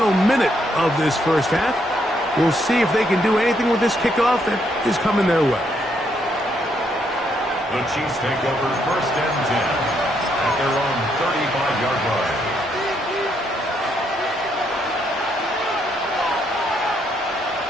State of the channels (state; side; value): normal; both; correlation 0.74